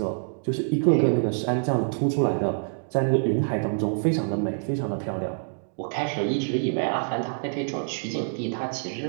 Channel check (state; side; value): silent; left; digital silence